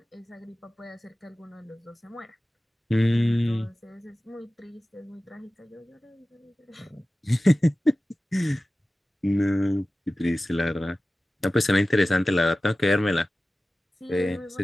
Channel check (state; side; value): normal; both; correlation 0.96